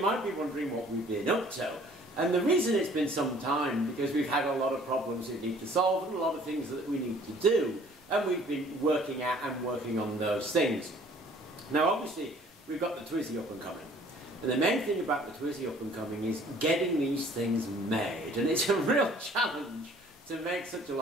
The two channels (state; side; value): normal; both; correlation 0.55